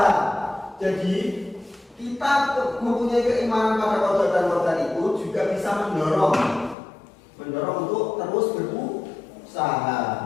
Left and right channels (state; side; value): drops out; right; at 6.8 s